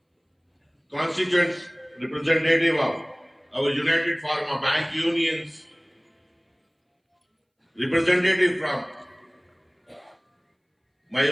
constituent representative of our United Pharma Bank Unions, representative from my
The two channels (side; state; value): both; identical; correlation 1.00